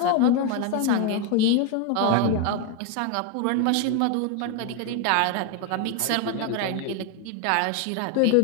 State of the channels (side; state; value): both; different; correlation 0.01